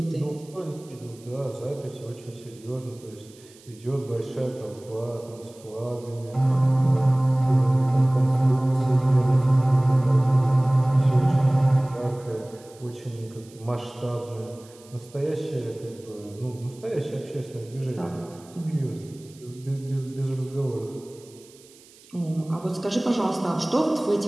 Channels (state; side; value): noise; right; hiss, 25 dB below the sound